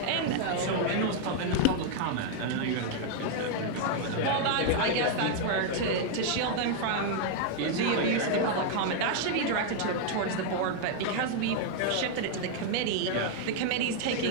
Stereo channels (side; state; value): both; different; correlation 0.00